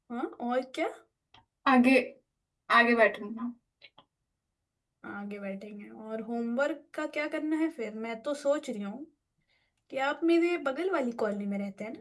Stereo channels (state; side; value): identical; both; correlation 1.00